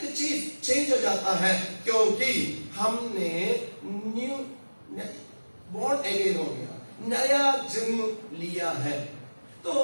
चीज चेंज हो जाता है। क्योंकि हमने न्यू बॉर्न अगेन हो गया, नया जन्म लिया है, तो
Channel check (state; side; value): inverted; both; correlation -1.00